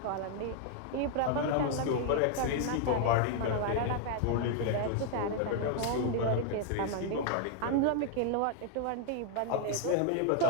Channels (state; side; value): different; both; correlation 0.00